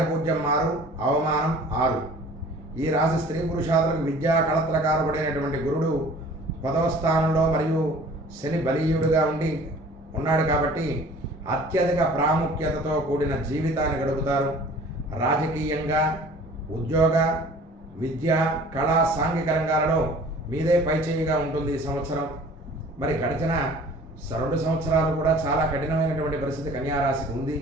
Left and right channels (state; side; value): normal; both; correlation 0.47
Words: 6, అవమానం 6. ఈ రాశి స్త్రీ పురుషాదులకు విద్యా కళత్రకారకుడైనటువంటి గురుడు 10వ స్థానంలో మరియు శని బలీయుడుగా ఉన్నాడు కాబట్టి అత్యధిక ప్రాముఖ్యతతో కూడిన జీవితాన్ని గడుపుతారు. రాజకీయంగా, ఉద్యోగ, విద్య, కళ, సాంఘిక రంగాలలో మీదే పైచేయిగా ఉంటుంది ఈ సంవత్సరం. మరి గడిచిన 2 సంవత్సరాలు కూడా చాలా కఠినమైనటువంటి పరిస్థితి కన్యారాశికి ఉంది.